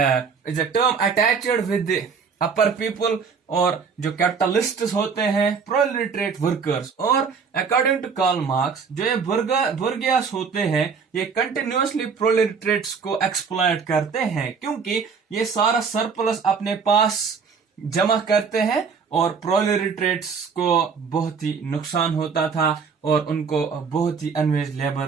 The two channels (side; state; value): left; quieter; 5.8 dB